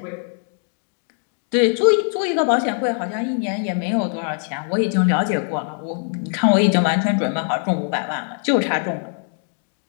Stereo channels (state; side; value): silent; right; digital silence